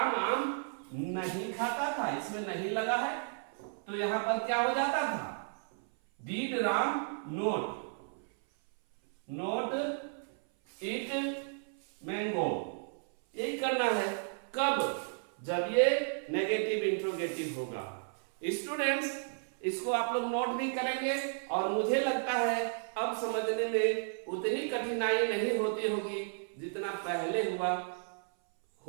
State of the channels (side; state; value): left; silent; 55 dB below the other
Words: आम नहीं खाता था, इसमें नहीं लगा है, तो यहां पर क्या हो जाता था डीड राम नोट ईट मैंगो। यही करना है कब, जब ये नेगेटिव इंट्रोगेटिव होगा। स्टूडेंट्स इसको आप लोग नोट भी करेंगे और मुझे लगता है अब समझने में उतनी कठिनाई नहीं होती होगी जितना पहले हुआ